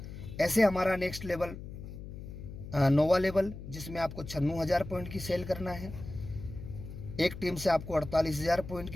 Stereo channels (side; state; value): left; noise; hum, 11 dB below the sound